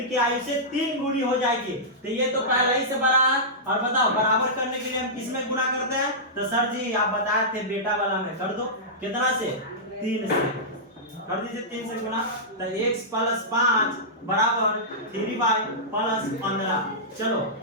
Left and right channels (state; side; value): normal; both; correlation -0.14